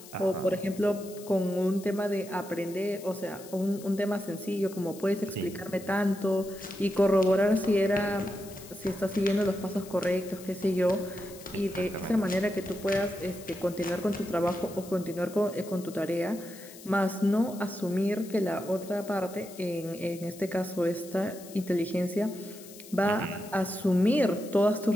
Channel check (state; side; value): noise; left; hiss, 18 dB below the sound